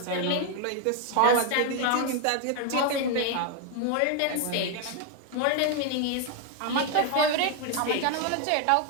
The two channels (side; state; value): both; different; correlation 0.01